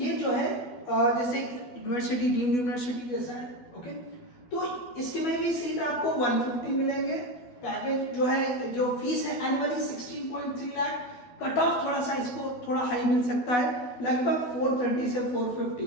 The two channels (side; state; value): right; late; 12 ms